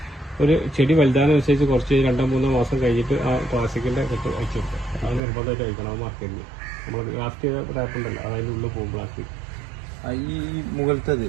ഒരു ചെടി വലുതാനുസരിച്ച് കുറച്ച് 2-3 മാസം കഴിഞ്ഞിട്ട് ആ പ്ലാസ്റ്റിക്കിന്റെ കെട്ട് അയച്ചു കൊടുക്കുക. അത് നിർബന്ധമായിട്ട് അയക്കണം. അത് മാർക്കറ്റിൽ നമ്മൾ ലാസ്റ്റ് ചെയ്ത ടാപ്പ് ഉണ്ടല്ലോ അതിൻ്റെ ഉള്ളിൽ പോകും പ്ലാസ്റ്റിക്. ഈ മുകളിലത്തത്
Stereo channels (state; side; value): drops out; left; at 5.2 s